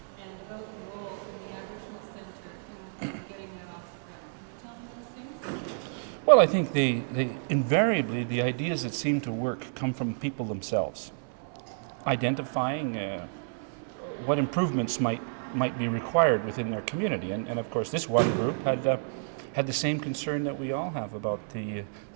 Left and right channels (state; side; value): silent; left; 58 dB below the other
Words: and about the role in the Aboriginal Centre in getting that off the ground. Can you tell me those things? Well, I think they invariably the ideas that seem to work come from people themselves, identifying what improvements might be required within their community. And of course, this one group had the same concern that we all have about the